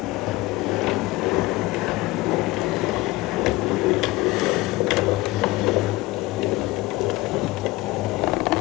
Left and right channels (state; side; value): quieter; right; 20.5 dB